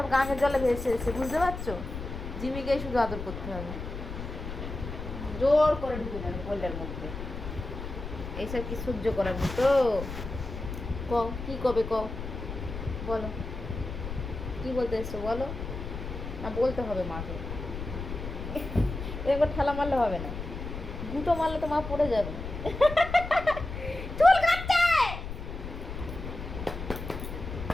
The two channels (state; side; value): noise; left; rumble, 7 dB below the sound